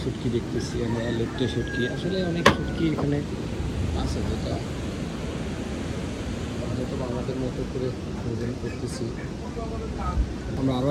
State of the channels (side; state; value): both; identical; correlation 1.00